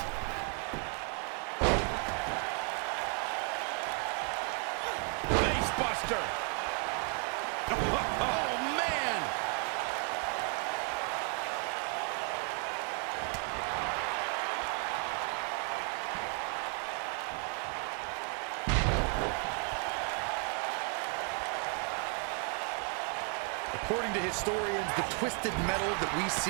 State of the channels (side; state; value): left; quieter; 39.8 dB